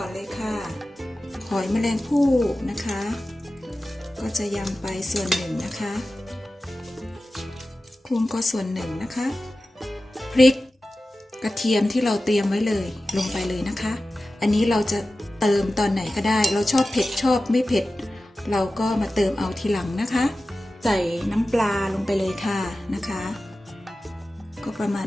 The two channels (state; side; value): normal; both; correlation 0.95